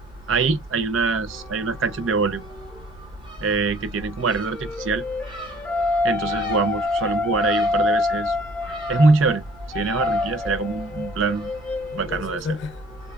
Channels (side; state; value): right; noise; rumble, 23 dB below the sound